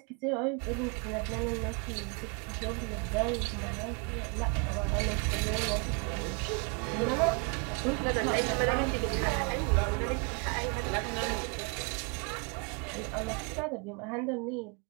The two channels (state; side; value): quieter; left; 34.7 dB